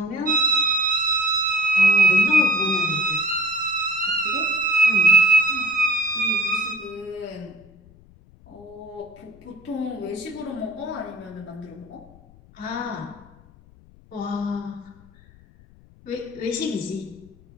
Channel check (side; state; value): left; noise; rumble, 26 dB below the sound